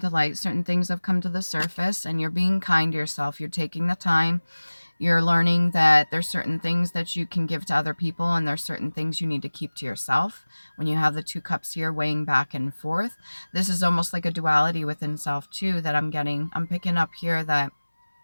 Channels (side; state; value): both; inverted; correlation -1.00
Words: to light, certain things have come to the surface, and you're being kind to yourself. You're taking the time. You're learning that there's certain things that you can give to other people, and there's certain things you need to keep to yourself. When you have the two cups here weighing back and forth, this is almost like a duality within self too that I'm picking up here, that